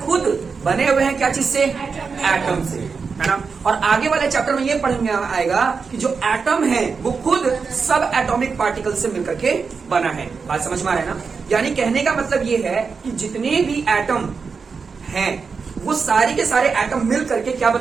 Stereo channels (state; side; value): quieter; left; 5.2 dB